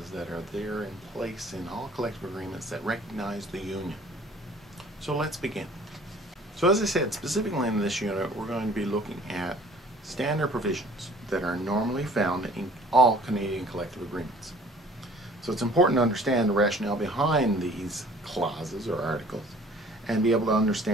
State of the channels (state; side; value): normal; both; correlation 0.52